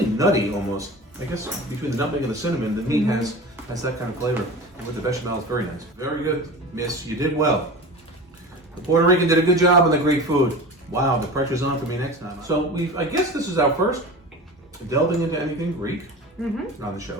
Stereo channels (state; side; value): normal; both; correlation 0.33